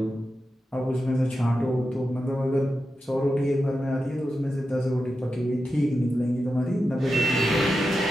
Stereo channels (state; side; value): normal; both; correlation 0.90